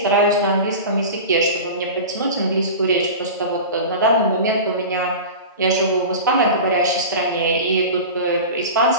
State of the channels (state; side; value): inverted; both; correlation -0.30